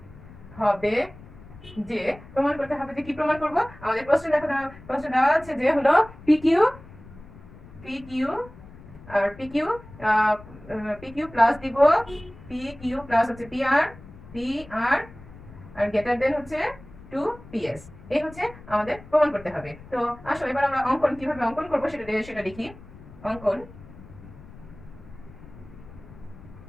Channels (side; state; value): left; noise; rumble, 19 dB below the sound